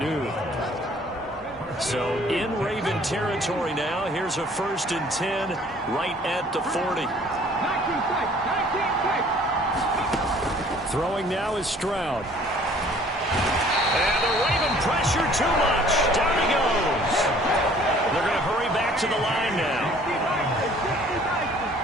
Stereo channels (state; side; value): normal; both; correlation 0.55